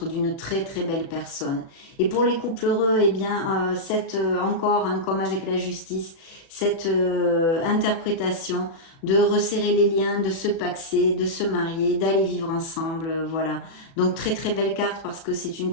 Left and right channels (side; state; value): right; late; 36 ms